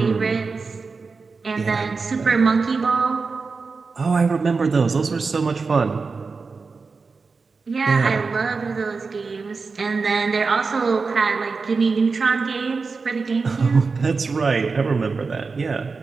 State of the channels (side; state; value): left; quieter; 4.5 dB